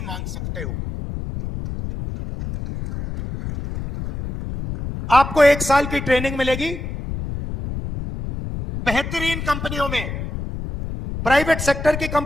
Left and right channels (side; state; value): left; noise; rumble, 7 dB below the sound